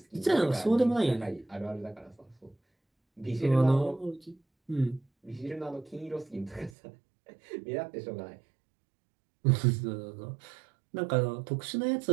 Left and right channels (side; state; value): left; drops out; at 6.8 s